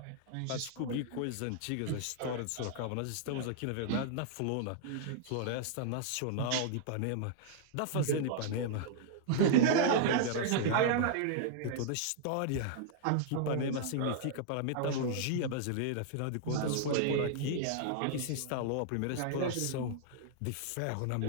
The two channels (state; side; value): different; both; correlation -0.01